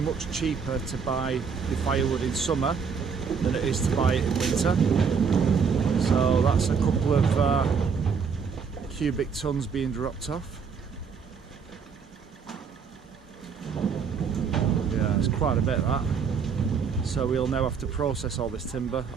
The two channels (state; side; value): quieter; left; 6.0 dB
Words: cheaper to buy your firewood in summer than it is to buy it in winter. So that's a couple of cubic tons being dropped off. Yeah, it's quite a bit of that. So we'll now have to process all this timber,